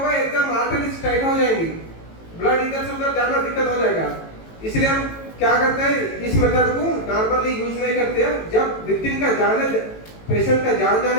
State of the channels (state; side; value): late; right; 18 ms